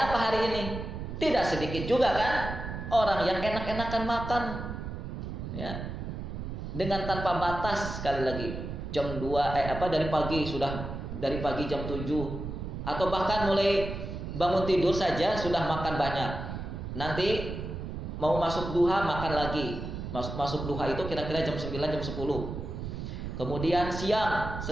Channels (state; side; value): noise; right; rumble, 6 dB below the sound